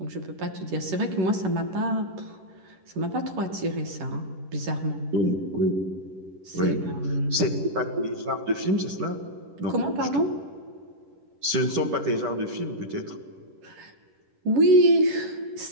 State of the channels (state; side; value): late; left; 10 ms